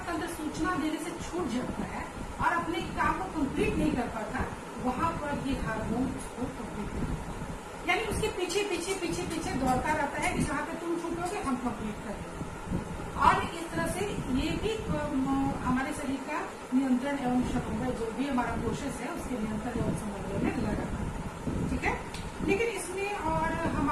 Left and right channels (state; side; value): identical; both; correlation 1.00